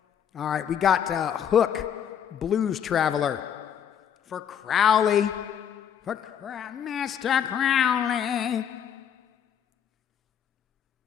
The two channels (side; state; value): right; quieter; 8.7 dB